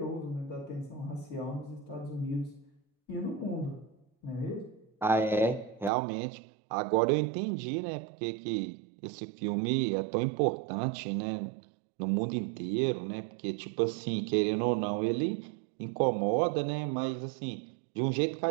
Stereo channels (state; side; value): drops out; left; at 5.9 s